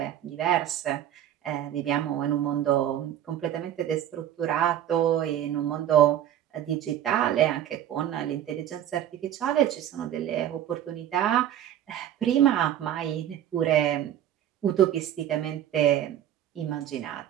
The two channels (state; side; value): quieter; left; 11.1 dB